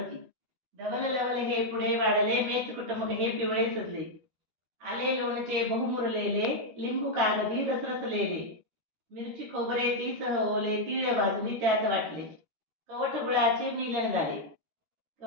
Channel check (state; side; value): late; left; 13 ms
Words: धवल लवल हे पुढे वाढले, मेच कुटुंब हे पिवळे सजले. आले लोणचे बहुमुरलेले, लिंबू कागदी रसरसलेले. मिरची खोबरे ती सह ओले, तीळ भाजली त्यात वाटले. कवठ गुळाचे मिलन झाले,